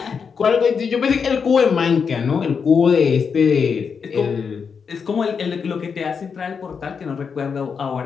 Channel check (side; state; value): right; quieter; 6.1 dB